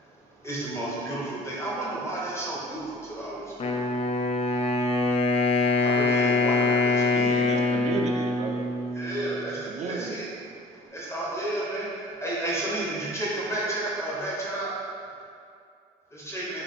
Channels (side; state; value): both; normal; correlation 0.45